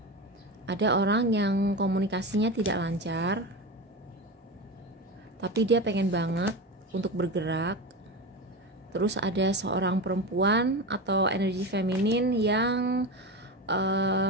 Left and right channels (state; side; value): normal; both; correlation 0.22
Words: Ada orang yang komunikasinya tidak lancar, tapi dia pengen banget untuk bergerak. Terus ada seorang perempuan atau energi feminin yang